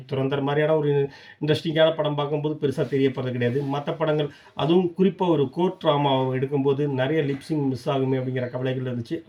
துரந்தர் மாதிரியான ஒரு இன்ட்ரெஸ்டிங்கான படம் பார்க்கும்போது பெருசாக தெரியப்படுறது கிடையாது. மற்ற படங்கள் அதுவும் குறிப்பாக ஒரு கோர்ட் ட்ராமாவை எடுக்கும்போது நிறைய லிப்ஸிங் மிஸ் ஆகுமே அப்படிங்கிற கவலைகள் இருந்துச்சு.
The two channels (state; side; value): identical; both; correlation 1.00